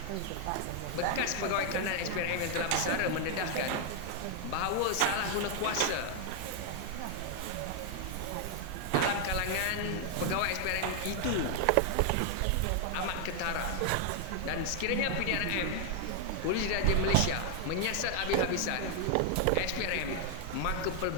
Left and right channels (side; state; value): both; different; correlation 0.00